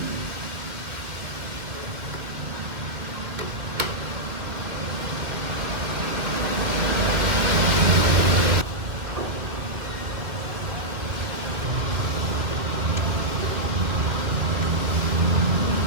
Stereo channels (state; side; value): late; left; 2.3 ms